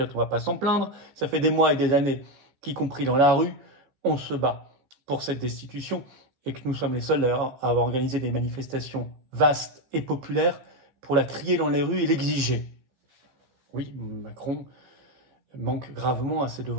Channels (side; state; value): left; late; 15 ms